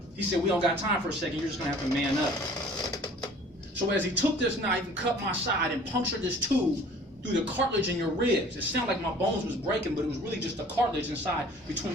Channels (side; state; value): both; normal; correlation 0.49